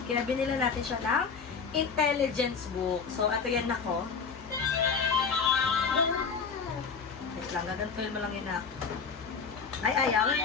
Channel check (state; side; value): quieter; right; 5.6 dB